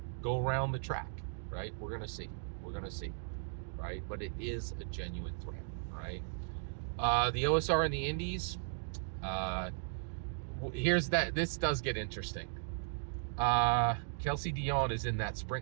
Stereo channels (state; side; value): silent; left; digital silence